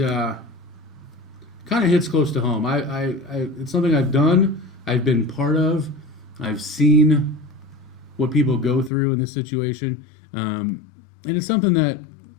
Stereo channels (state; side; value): drops out; right; at 8.9 s